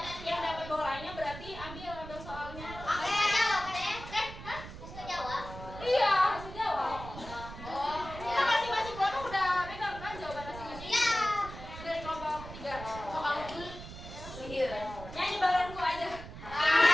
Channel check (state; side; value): noise; right; rumble, 12 dB below the sound